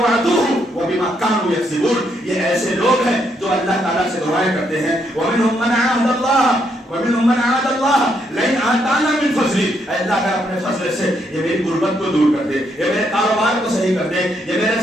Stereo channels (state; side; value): normal; both; correlation 0.75